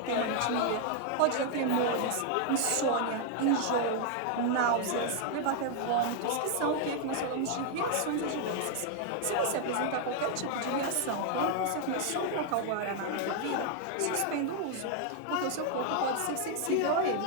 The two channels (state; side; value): different; both; correlation 0.00